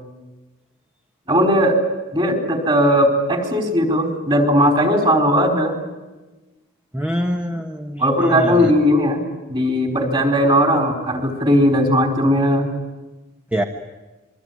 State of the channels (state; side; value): normal; both; correlation 0.42